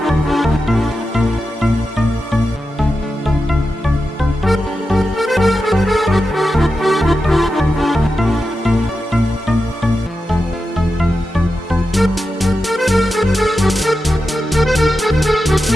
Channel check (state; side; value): normal; both; correlation 0.90